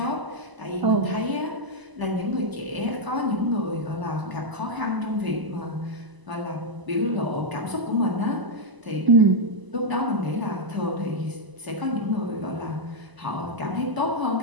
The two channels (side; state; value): left; late; 1.0 ms